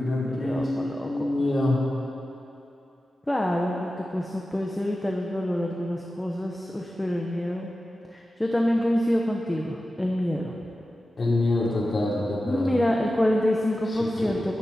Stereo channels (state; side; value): normal; both; correlation 0.93